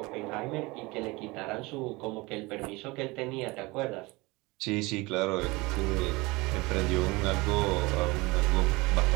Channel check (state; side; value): quieter; left; 23.4 dB